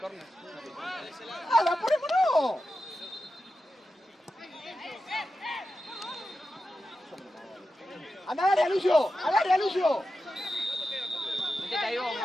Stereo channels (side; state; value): both; normal; correlation 0.91